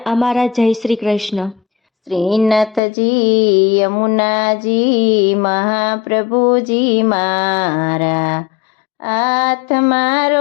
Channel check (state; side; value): drops out; right; at 2.8 s